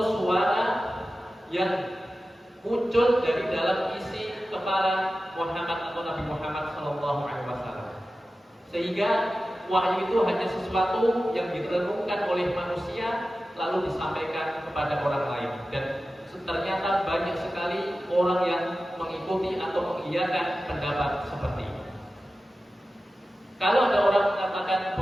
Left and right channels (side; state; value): both; normal; correlation 0.94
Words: suara yang muncul dari dalam isi kepala Muhammad atau Nabi Muhammad SAW. Sehingga wahyu itu hanya sesuatu yang direnungkan oleh manusia lalu disampaikan kepada orang lain. Dan ternyata banyak sekali orang yang mengikuti atau mengiyakan pendapat seperti ini. Kalau ada orang mengatakan